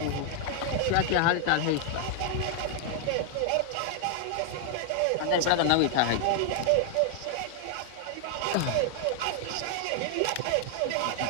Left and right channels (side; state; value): both; different; correlation 0.00